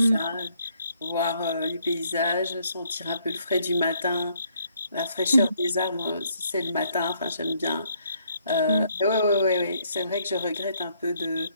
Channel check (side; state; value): both; inverted; correlation -0.69